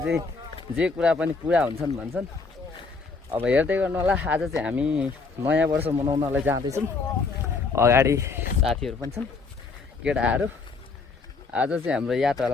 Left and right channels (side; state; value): right; quieter; 4.3 dB